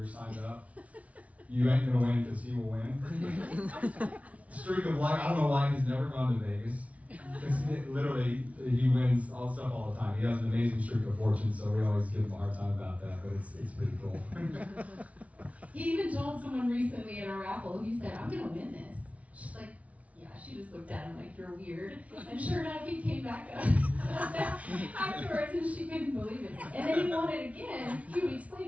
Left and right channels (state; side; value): late; left; 0.066 ms